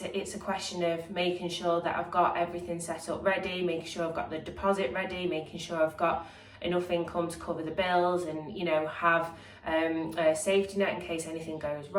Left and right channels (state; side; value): identical; both; correlation 1.00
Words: a question of making sure that I've got everything set up ready, making sure I've got the deposit ready, making sure I've got enough income to cover the bills, and, you know, have a safety net in case anything goes